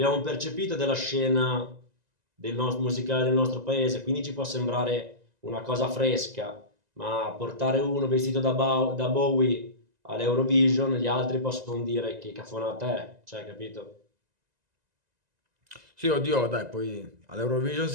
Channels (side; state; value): left; late; 1.9 ms